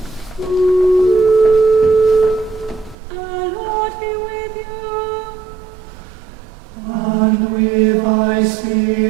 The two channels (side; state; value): left; drops out; at 3.0 s